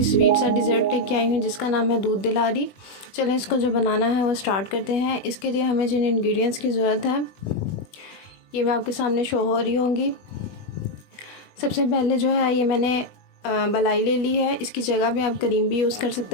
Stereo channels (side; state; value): right; late; 21 ms